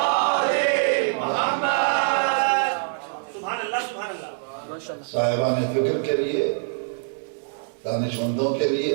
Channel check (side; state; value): left; silent; digital silence